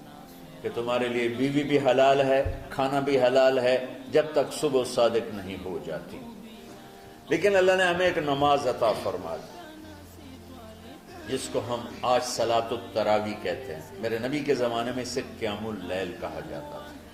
کہ تمہارے لیے بیوی بھی حلال ہے، کھانا بھی حلال ہے جب تک صبح صادق نہیں ہو جاتی. لیکن اللہ نے ہمیں ایک نماز عطا فرما دی جس کو ہم آج صلاۃ التراویح کہتے ہیں. میرے نبی کے زمانے میں اسے قیام اللیل کہا جاتا تھا.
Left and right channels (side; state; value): both; identical; correlation 1.00